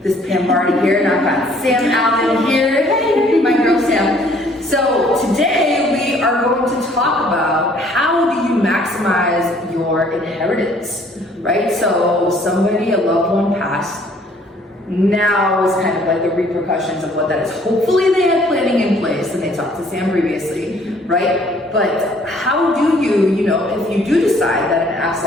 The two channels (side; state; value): both; normal; correlation 0.59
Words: this is Pam Bardhi here, and I've got Sam Allen here. Hey, my girl Sam. So today we are going to talk about how do you maximize your inheritance, right? So somebody, a loved one passed, now is kind of like the repercussions of what that is. Hopefully they had planning in place and they talked to Sam previously, right? But how do you, if you do decide that an